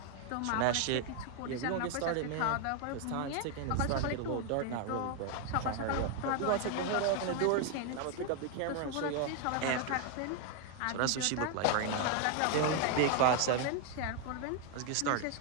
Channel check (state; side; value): different; both; correlation 0.01